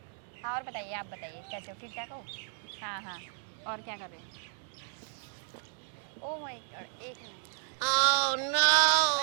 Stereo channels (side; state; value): left; silent; 56 dB below the other